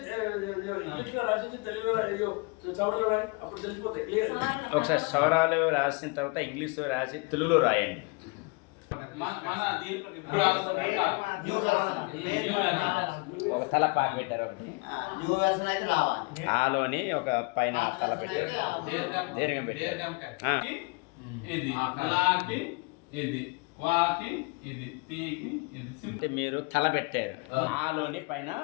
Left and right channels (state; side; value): quieter; right; 28.7 dB